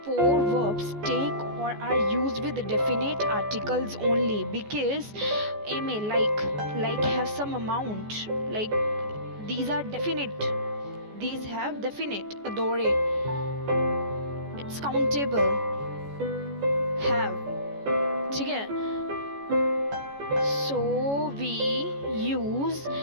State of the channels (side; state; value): left; late; 14 ms